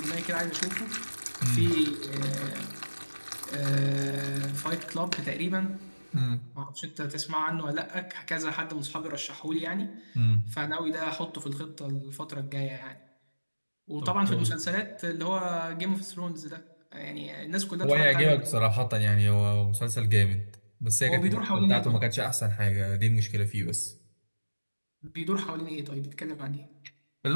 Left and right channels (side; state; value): both; inverted; correlation -1.00